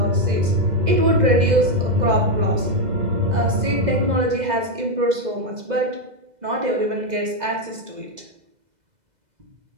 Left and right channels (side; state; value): left; late; 2.0 ms